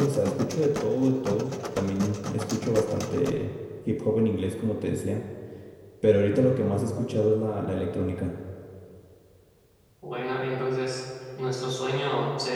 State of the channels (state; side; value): identical; both; correlation 1.00